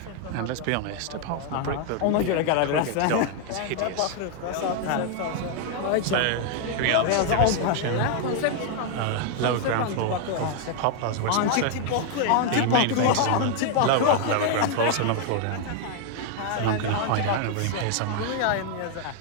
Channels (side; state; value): both; different; correlation 0.00